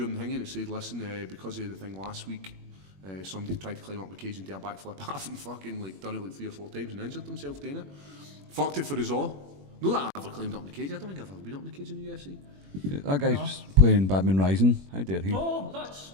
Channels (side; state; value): left; late; 21 ms